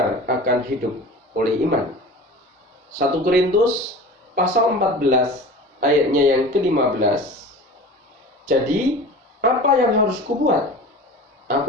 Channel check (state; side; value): normal; both; correlation 0.37